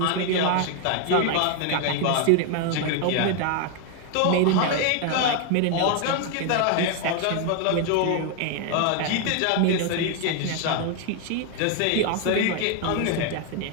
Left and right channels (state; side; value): different; both; correlation 0.01